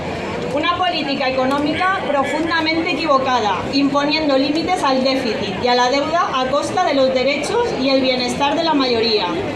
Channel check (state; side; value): noise; left; rumble, 29 dB below the sound